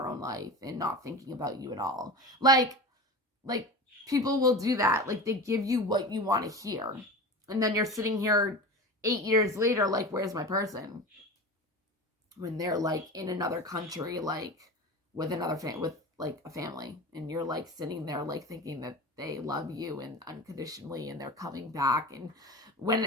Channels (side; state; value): both; normal; correlation 0.30